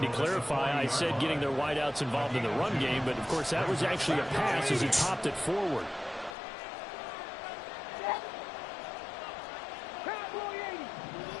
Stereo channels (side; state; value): right; drops out; at 6.4 s